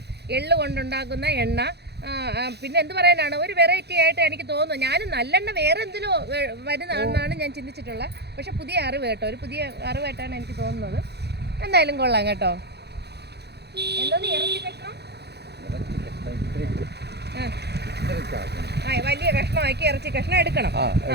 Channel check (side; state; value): left; late; 0.48 ms